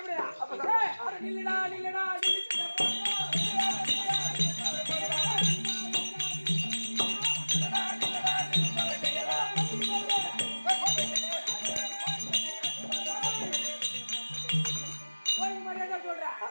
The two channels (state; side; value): inverted; both; correlation -1.00